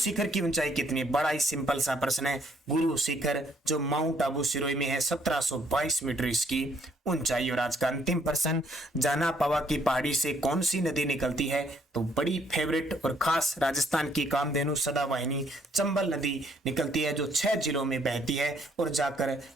की ऊंचाई कितनी है? बड़ा ही सिंपल सा प्रश्न है। गुरु शिखर जो माउंट आबू सिरोही में है 1722 मीटर इसकी ऊंचाई। और आज का अंतिम प्रश्न, जाना पावा की पहाड़ी से कौन सी नदी निकलती है? तो बड़ी फेवरेट और खास राजस्थान की कामधेनु सदावाहिनी चंबल नदी निकलती है, जो 6 जिलों में बहती है और जाकर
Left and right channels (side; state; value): both; normal; correlation 0.67